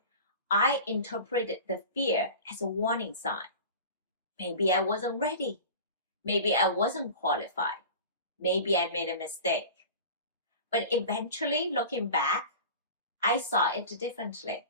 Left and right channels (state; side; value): inverted; both; correlation -0.36